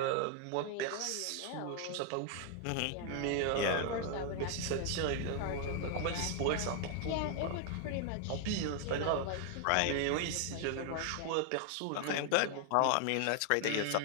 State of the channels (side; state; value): both; different; correlation 0.00